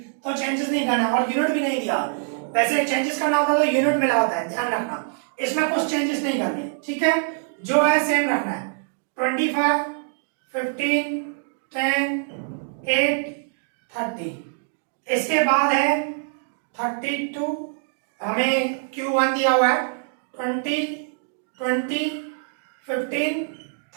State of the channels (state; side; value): silent; left; digital silence